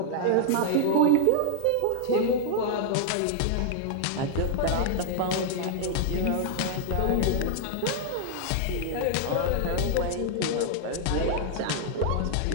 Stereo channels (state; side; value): different; both; correlation 0.00